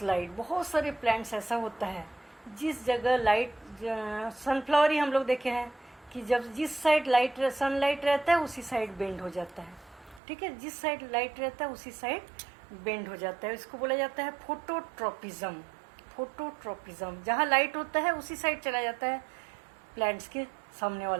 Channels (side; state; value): left; drops out; at 10.2 s